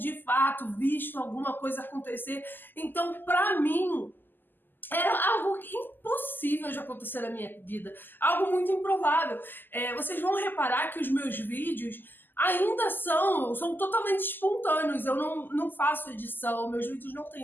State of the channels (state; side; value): late; right; 0.091 ms